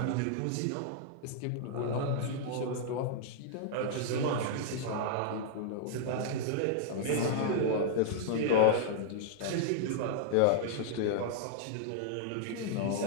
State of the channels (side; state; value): both; different; correlation -0.01